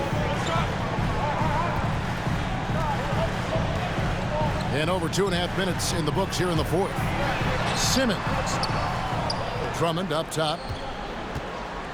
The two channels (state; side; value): identical; both; correlation 1.00